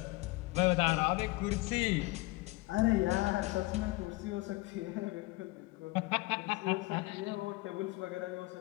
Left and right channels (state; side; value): quieter; right; 22.0 dB